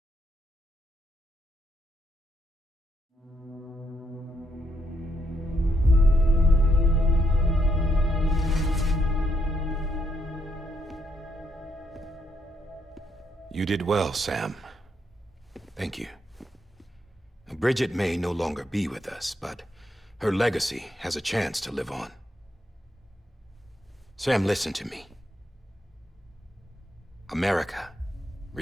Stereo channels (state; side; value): normal; both; correlation 0.77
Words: You did well, Sam. Thank you. Bridget may no longer be with us, but her legacy has a chance to live on. Sam, listen to me. America,